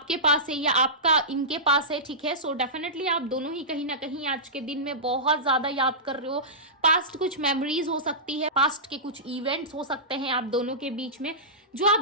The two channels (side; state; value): both; normal; correlation -0.17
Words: पास है या आपका इनके पास है, ठीक है, डेफिनेटली आप दोनों ही कहीं ना कहीं आज के दिन में बहुत ज्यादा याद कर रहे हो। पास्ट कुछ मेमोरीज हो सकती है, पास्ट के कुछ इवेंट्स हो सकते हैं आप दोनों के बीच में, जो आप